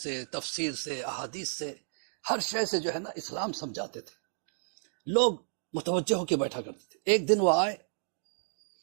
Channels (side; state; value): left; silent; digital silence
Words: تفسیر سے، احادیث سے، ہر شے سے جو ہے نا اسلام سمجھاتے تھے، لوگ متوجہ ہو کے بیٹھا کرتے تھے۔ ایک دن وہ آئے،